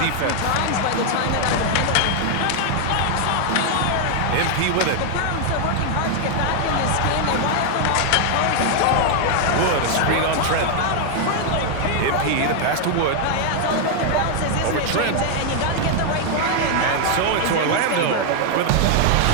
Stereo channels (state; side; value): different; both; correlation 0.00